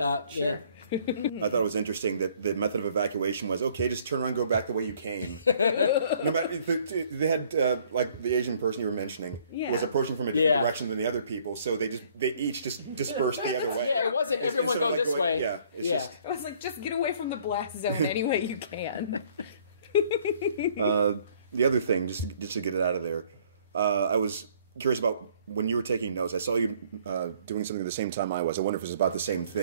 way. Sure. Yeah. I thought it was interesting that the method of evacuation was, okay, just turn around and go back the way you came. No matter, they had, like the Asian person you were mentioning, was approaching from a different direction than the other people, so they each just dispersed the other way. Yeah, it wasn't everyone go this way. Yeah, It was like, just get away from the blast zone any way you can. The other thing, just to get it out of there, I was curious about when you were taking notes. I saw you doing something at the same time I was. I wonder if it was about the same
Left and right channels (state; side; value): inverted; both; correlation -0.59